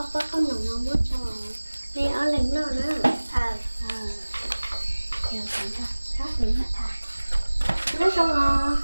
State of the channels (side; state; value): both; inverted; correlation -1.00